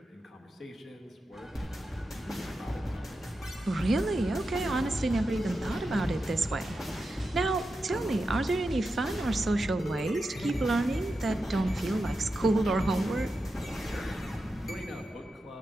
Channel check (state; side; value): normal; both; correlation 0.89